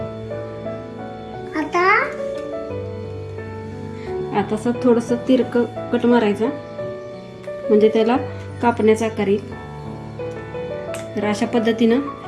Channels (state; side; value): identical; both; correlation 1.00